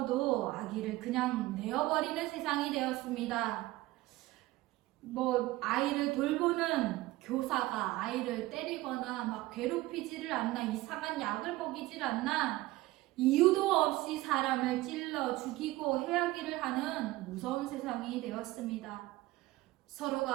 아기를 그냥 내어버리는 세상이 되었습니다. 아이를 돌보는 교사가 아이를 때리거나 막 괴롭히지를 않나, 이상한 약을 먹이질 않나, 이유도 없이 사람을 찔러 죽이고 해하기를 하는 무서운 세상이 되었습니다.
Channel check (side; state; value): left; quieter; 18.3 dB